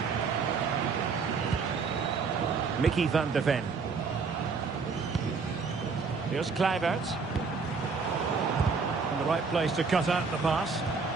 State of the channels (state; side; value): quieter; left; 5.0 dB